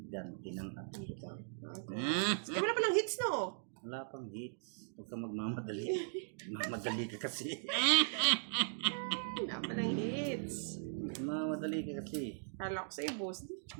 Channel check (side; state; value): left; silent; digital silence